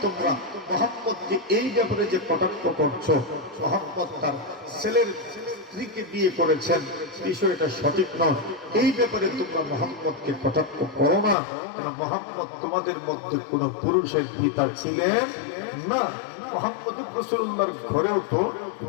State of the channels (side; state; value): right; drops out; at 11.4 s